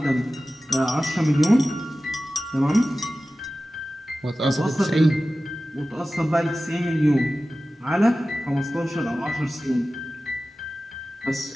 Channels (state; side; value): normal; both; correlation 0.96